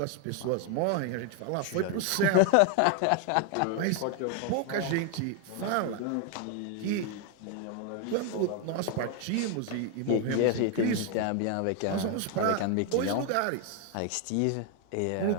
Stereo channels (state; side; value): different; both; correlation 0.01